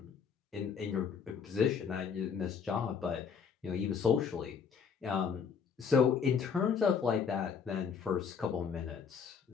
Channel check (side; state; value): right; quieter; 6.5 dB